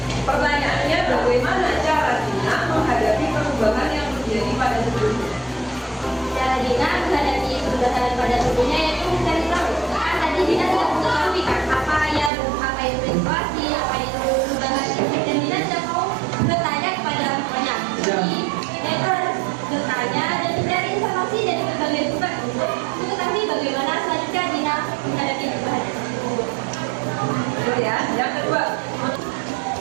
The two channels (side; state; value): left; drops out; at 12.3 s